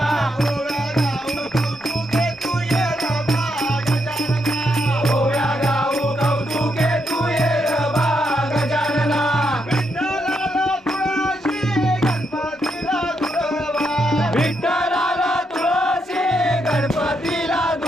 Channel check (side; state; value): both; normal; correlation 0.80